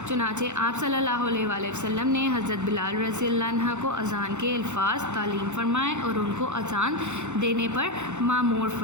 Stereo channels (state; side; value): late; left; 0.83 ms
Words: چنانچہ آپ صلی اللہ علیہ وآلہ وسلم نے حضرت بلال رضی اللہ عنہ کو اذان کے الفاظ تعلیم فرمائے اور ان کو اذان دینے پر مامور